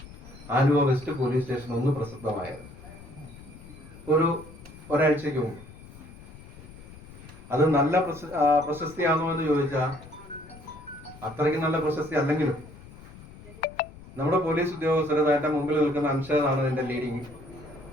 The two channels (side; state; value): left; noise; rumble, 18 dB below the sound